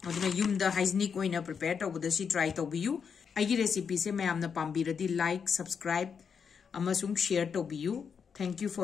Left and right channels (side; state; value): right; quieter; 6.5 dB